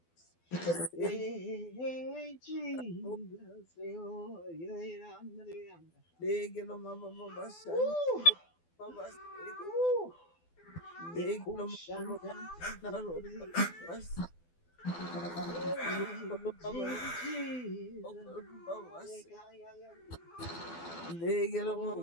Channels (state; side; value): late; right; 12 ms